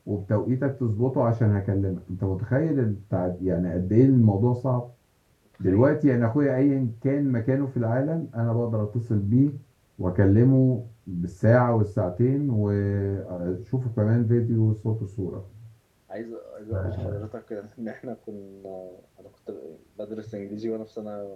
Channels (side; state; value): both; identical; correlation 1.00